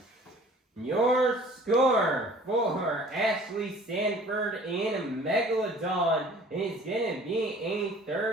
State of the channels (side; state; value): both; normal; correlation 0.50